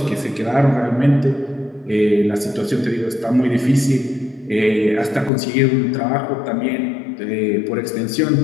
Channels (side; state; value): right; drops out; at 5.3 s